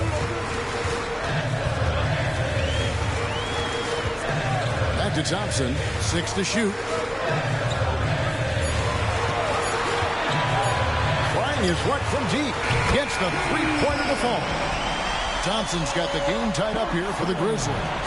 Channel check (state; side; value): identical; both; correlation 1.00